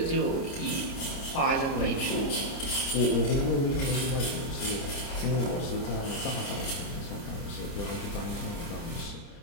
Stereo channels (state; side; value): late; right; 30 ms